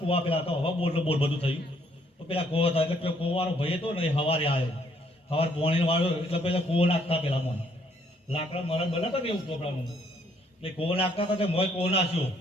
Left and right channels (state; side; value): normal; both; correlation 0.67